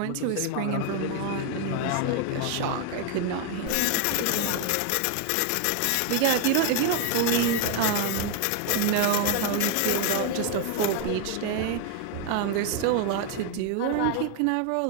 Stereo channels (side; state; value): both; different; correlation 0.01